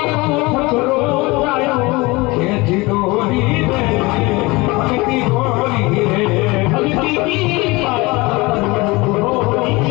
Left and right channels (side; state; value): right; quieter; 23.3 dB